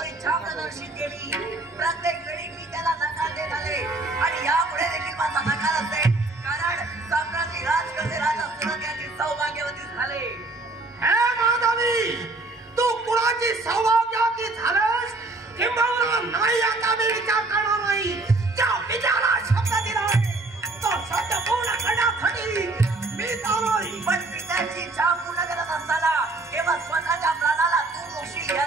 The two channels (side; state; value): left; quieter; 3.1 dB